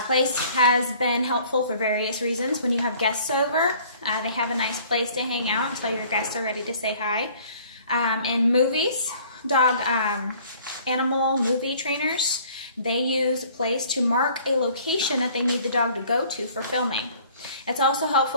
Place has been helpful for various reasons. When you have guests over, they have a nice place to hang out until your guests are ready to say hi. In movies, animal movie trainers, they use place to mark a location that they need the dog to go to for filming. It's also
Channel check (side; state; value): both; inverted; correlation -0.54